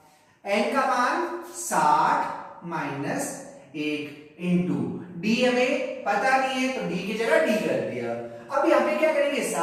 n का मान 60 माइनस 1 इंटू डी हमें पता नहीं है, तो डी की जगह डी कर दिया। अब यहाँ पे क्या करेंगे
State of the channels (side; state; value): both; identical; correlation 1.00